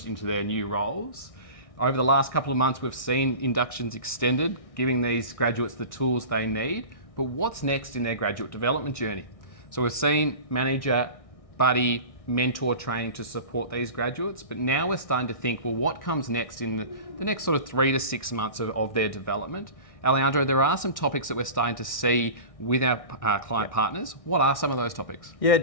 into their new roles. Over the last couple of months, we've seen inductions extended, giving these graduates the tools they need. But what's next in their graduate development journey? So we've seen manager, buddy, mentor training to support these graduates, but now we're starting to think, well, what comes next in the next sort of 3 to 6 months of their development? Alejandro, there are some topics that we're starting to see with our client partners. What are some of those topics? Yeah,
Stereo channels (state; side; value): late; right; 1.6 ms